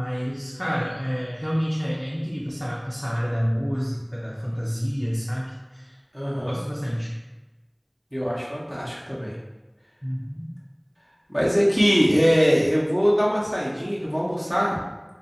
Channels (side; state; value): both; identical; correlation 1.00